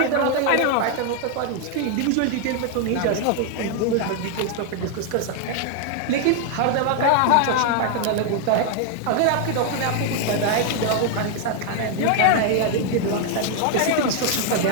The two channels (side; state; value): both; different; correlation 0.00